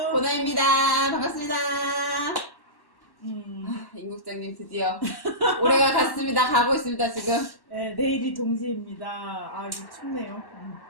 보나입니다. 반갑습니다. 임 국장님 드디어 올해가 갔습니다. 가고 있습니다 지금. 네, 내일이 동지입니다. 아 이거 춥네요.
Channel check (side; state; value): right; late; 1.1 ms